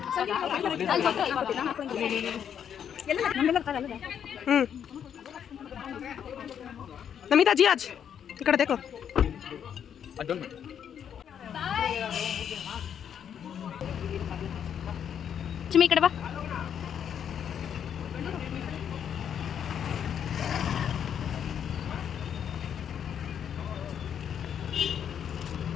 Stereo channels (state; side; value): quieter; right; 8.6 dB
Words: नमिता जी आज इकड़े देखो ಚಿಮ್ಮಿ ಈ ಕಡೆ ಬಾ.